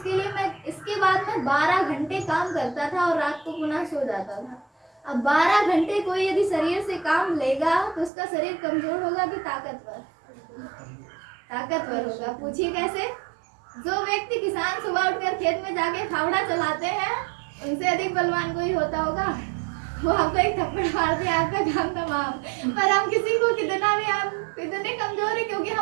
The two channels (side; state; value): left; drops out; at 8.1 s